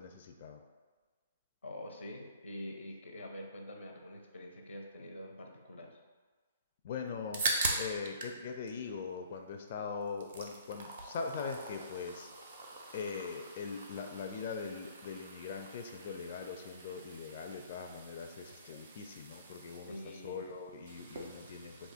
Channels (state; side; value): inverted; both; correlation -0.53